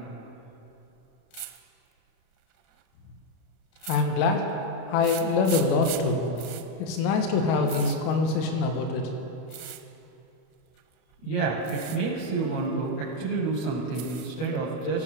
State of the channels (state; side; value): late; right; 32 ms